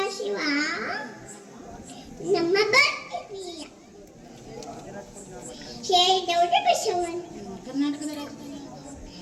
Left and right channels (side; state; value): both; identical; correlation 1.00